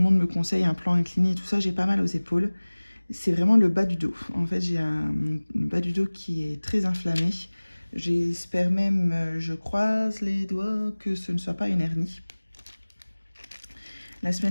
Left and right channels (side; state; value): both; inverted; correlation -1.00